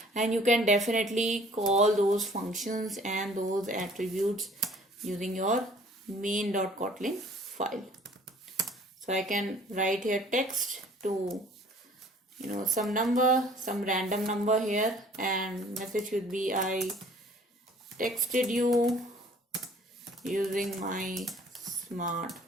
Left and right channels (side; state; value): both; normal; correlation 0.53